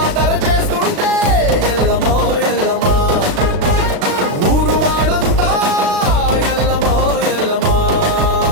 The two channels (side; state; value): left; late; 36 ms